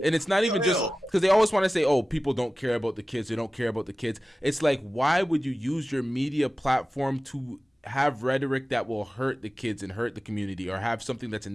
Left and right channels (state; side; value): normal; both; correlation 0.95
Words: And it's not even just because they always want to say, oh, people don't care about the kids. They don't care about the kids. It's like, why would you use your media platform to have rhetoric that will hurt the kids and hurt the community, or have something that's a